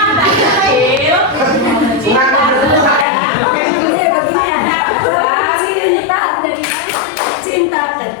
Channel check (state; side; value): drops out; right; at 3.1 s